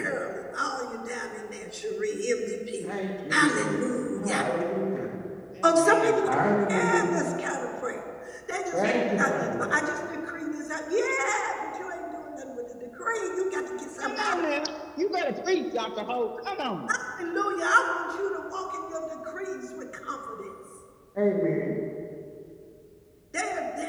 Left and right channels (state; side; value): identical; both; correlation 1.00